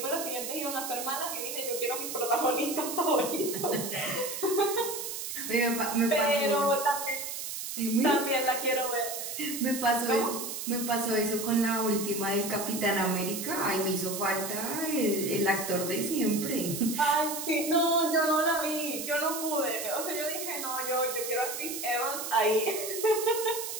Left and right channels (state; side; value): noise; right; hiss, 6 dB below the sound